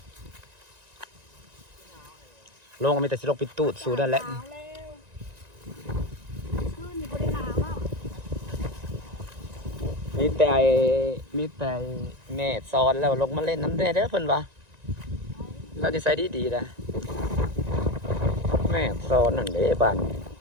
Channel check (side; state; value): left; late; 1.9 ms